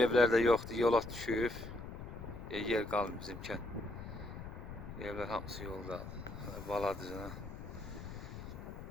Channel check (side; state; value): left; noise; rumble, 10 dB below the sound